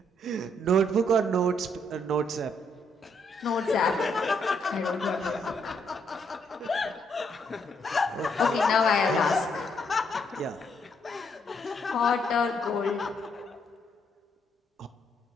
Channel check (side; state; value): both; normal; correlation 0.73